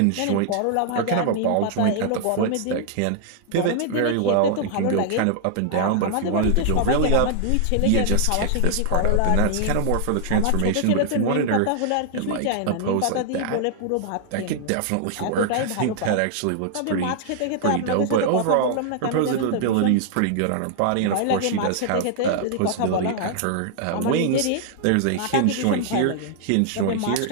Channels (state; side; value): different; both; correlation -0.01